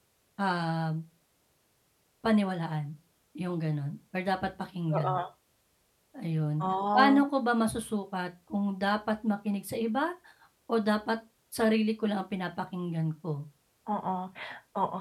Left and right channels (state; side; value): identical; both; correlation 1.00